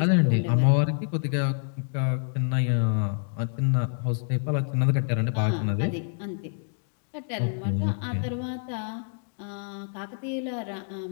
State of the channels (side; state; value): right; silent; digital silence